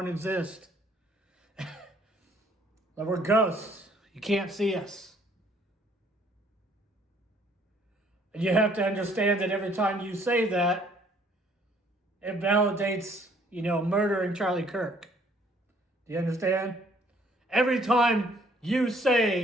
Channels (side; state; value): both; normal; correlation 0.62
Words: exist. That we're ghosts. You can't see us. And you have to understand that every time you say that, it validates, murdering Charlie Kirk. Do you understand? Every time you